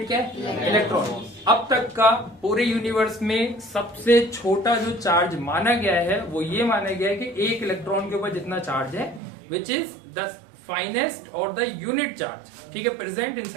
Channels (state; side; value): drops out; left; at 9.2 s